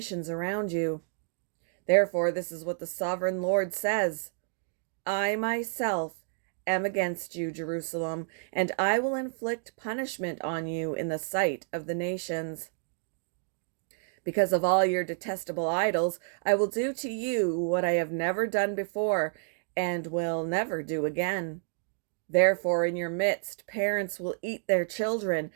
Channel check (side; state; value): left; silent; digital silence